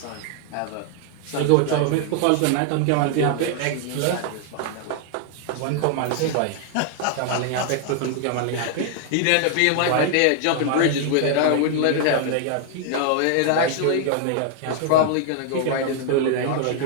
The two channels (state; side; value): different; both; correlation 0.00